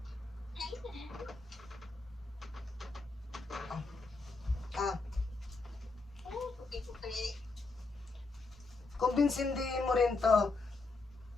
Kumbinsindihin mo rin to.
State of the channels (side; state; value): right; quieter; 3.7 dB